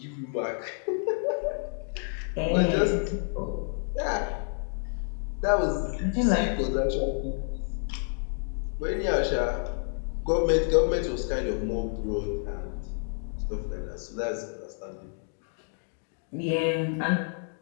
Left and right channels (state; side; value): silent; right; 55 dB below the other